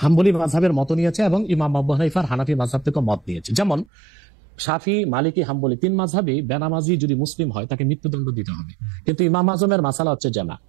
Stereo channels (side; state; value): left; drops out; at 3.9 s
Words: হাম্বলি মাযহাবের মত নিয়েছে এবং ইমাম আবু হানিফার হানাফি মাযহাব থেকে মত নিয়েছে। যেমন শাফি, মালিকি, হাম্বলি তিন মাযহাবই বেনামাজি যদি মুসলিম হয় তাকে মৃত্যুদণ্ড দিতে হবে। কিন্তু ইমাম আজমের মাসালা হচ্ছে যে না,